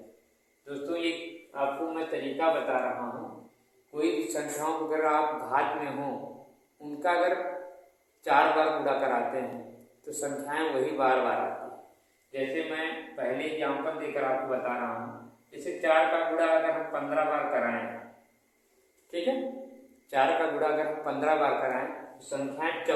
दोस्तों ये आपको मैं तरीका बता रहा हूँ, कोई भी संख्याओं को अगर आप घात में हो, उनका अगर 4 बार गुणा कराते हैं तो संख्याएं वही बार बार आती है। जैसे मैं पहले एग्जाम्पल देकर आपको बता रहा हूँ, जैसे 4 का गुणा अगर हम 15 बार कराएं, ठीक है, 4 का गुणा अगर हम 15 बार कराएं तो संख्याएं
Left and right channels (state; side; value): identical; both; correlation 1.00